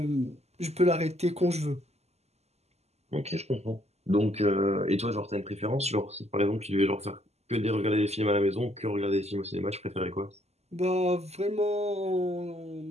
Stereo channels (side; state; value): left; late; 0.31 ms